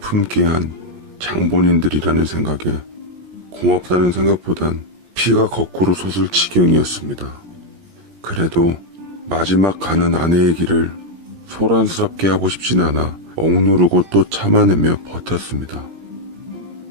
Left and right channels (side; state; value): left; late; 17 ms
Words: 한 장본인들이라는 생각에 고맙다는 생각보단 피가 거꾸로 솟을 지경이었습니다. 그래도 마지막 가는 아내의 길을 소란스럽게 하고 싶진 않아 억누르고 또 참아내며 버텼습니다.